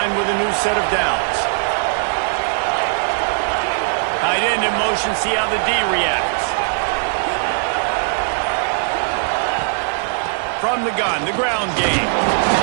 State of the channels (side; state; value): left; silent; digital silence